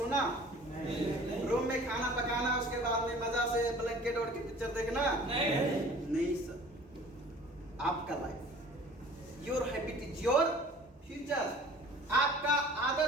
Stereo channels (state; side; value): normal; both; correlation 0.47